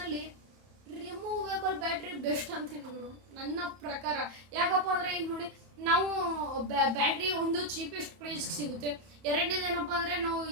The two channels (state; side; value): late; left; 31 ms